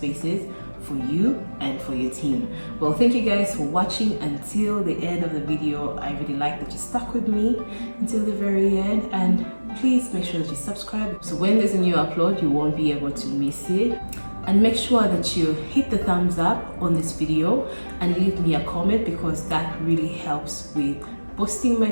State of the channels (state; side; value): inverted; both; correlation -1.00